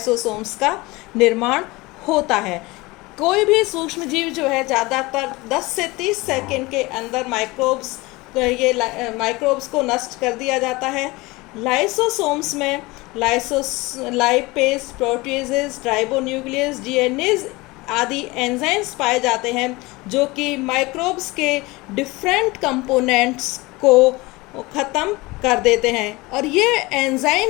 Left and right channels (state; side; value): quieter; right; 22.5 dB